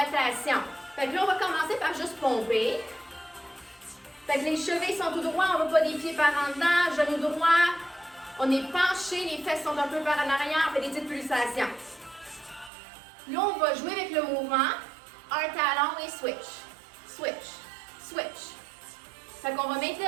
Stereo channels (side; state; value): left; drops out; at 12.7 s